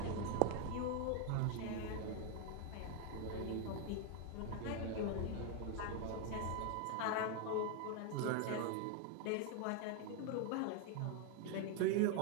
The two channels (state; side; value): different; both; correlation 0.01